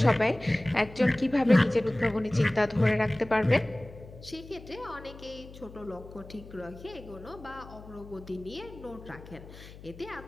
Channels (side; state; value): left; noise; hum, 17 dB below the sound